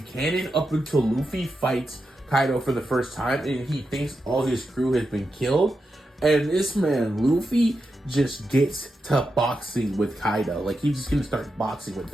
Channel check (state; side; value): normal; both; correlation 0.88